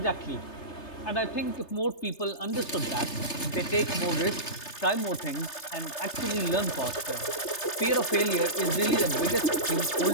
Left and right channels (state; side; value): late; right; 3.3 ms